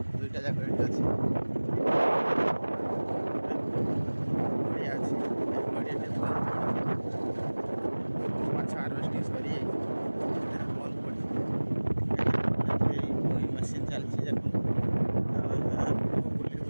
ଦୁଇଟା ଯାକ ଏଠି ଅଛି। ବଢ଼ିଆ ଅଛି। ମାଛ ହାର୍ଭେଷ୍ଟିଂ ସରିଯାଇଛି, ବନ୍ଦ ପଡ଼ିଛି। ଏଇ ମେସିନ୍ ଚାଲିଛି। ଦେଖନ୍ତୁ ବୁଲି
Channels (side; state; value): both; inverted; correlation -1.00